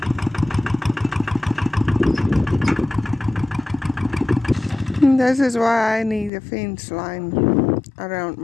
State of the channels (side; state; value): right; drops out; at 6.3 s